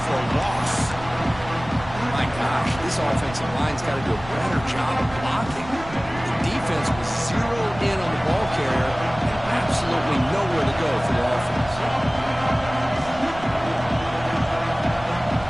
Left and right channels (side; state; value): right; noise; rumble, 15 dB below the sound